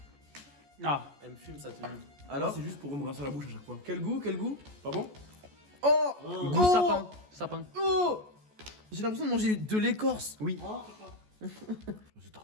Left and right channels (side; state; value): left; late; 14 ms